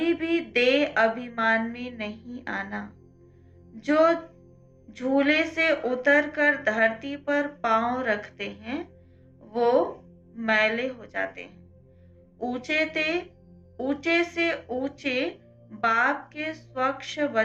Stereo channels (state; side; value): identical; both; correlation 1.00